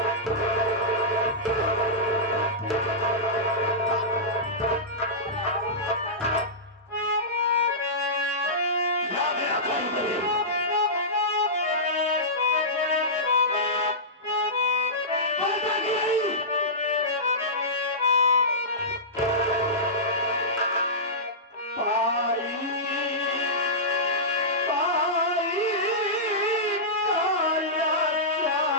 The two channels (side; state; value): both; normal; correlation -0.16